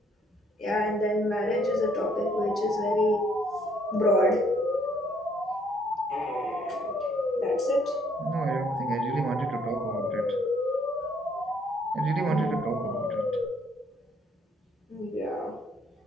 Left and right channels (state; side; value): normal; both; correlation 0.66